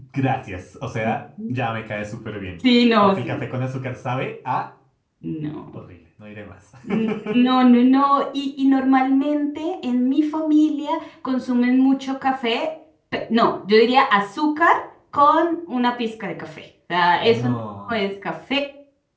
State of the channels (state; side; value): identical; both; correlation 1.00